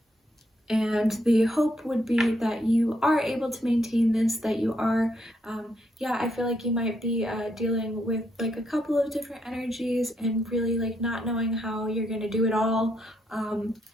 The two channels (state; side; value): normal; both; correlation 0.76